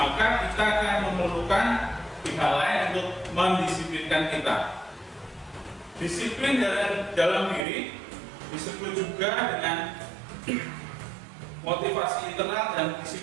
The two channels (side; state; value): left; drops out; at 7.6 s